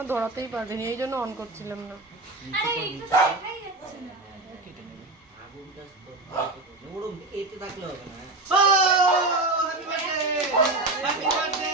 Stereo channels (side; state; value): left; quieter; 3.0 dB